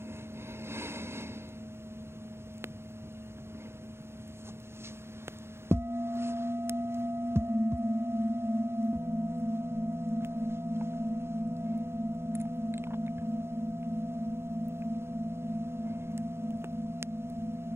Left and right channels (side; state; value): left; late; 0.12 ms